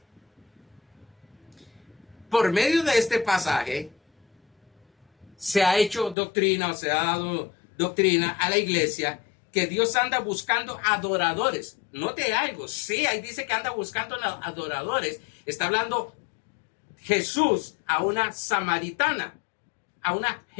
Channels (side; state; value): right; drops out; at 6.2 s